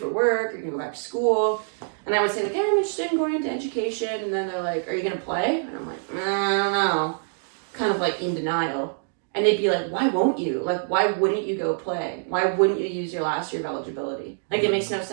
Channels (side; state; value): left; silent; digital silence